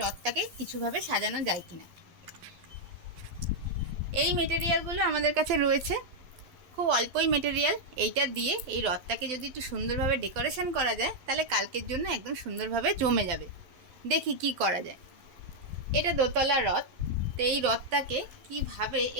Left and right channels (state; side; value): late; left; 11 ms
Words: রথটাকে কিছুভাবে সাজানো যায় কিনা। এই মেটেরিয়ালগুলো আমাদের কাছে রয়েছে, খুব অল্পই মেটেরিয়াল। এইটা দিয়ে এই রথটাকে যদি একটু সুন্দরভাবে ডেকোরেশন করা যায় তাহলে কালকের জন্য একদম সুন্দরভাবে জমে যাবে। দেখি কি করা যায়। এটা দোতলা রথ, তো এই রথটাকে কিভাবে